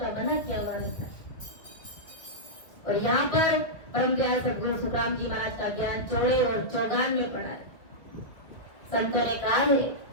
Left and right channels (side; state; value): right; late; 1.7 ms